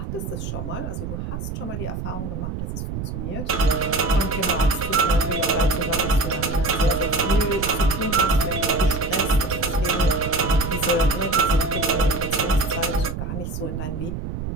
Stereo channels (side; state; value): right; noise; rumble, 5 dB below the sound